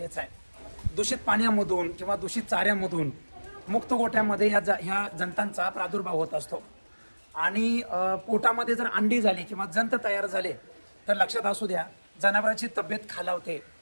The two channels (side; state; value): both; inverted; correlation -1.00